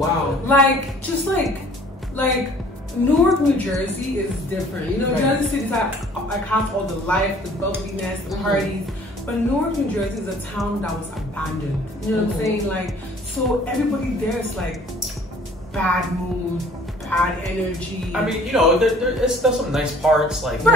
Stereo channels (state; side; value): normal; both; correlation 0.54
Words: Like just like Newark, New Jersey is different. You know, Jersey City's like has all the life, the bubbliness, the parties. But Newark, New Jersey is a town that was abandoned. You know what I'm saying? Like, so everybody there is like bad mood, bad energy. I mean, you know, there's some nice parts, like